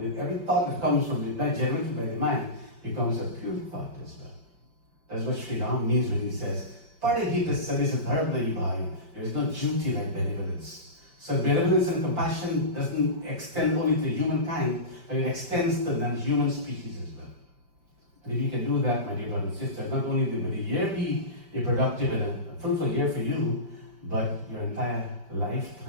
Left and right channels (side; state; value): left; late; 5.2 ms